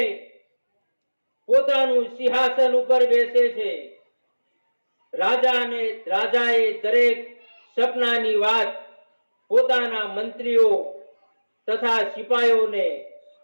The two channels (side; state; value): both; inverted; correlation -1.00